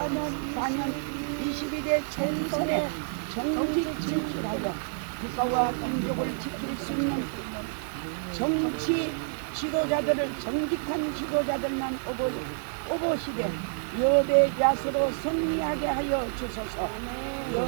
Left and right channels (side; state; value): left; silent; digital silence